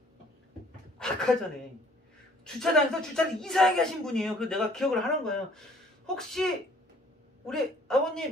아까 전에 주차장에서 주차를 이상하게 하신 분이에요. 그래서 내가 기억을 하는 거예요. 혹시 우리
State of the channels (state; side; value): normal; both; correlation 0.57